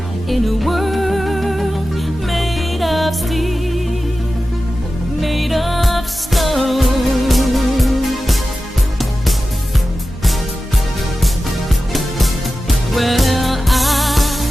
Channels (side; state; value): both; normal; correlation 0.94